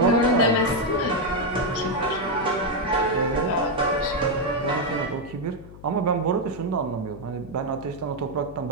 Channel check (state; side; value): noise; left; hum, 17 dB below the sound